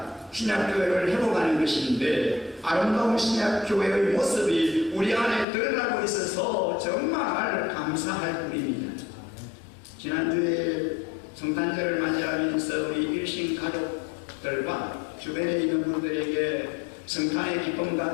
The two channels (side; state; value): right; drops out; at 5.5 s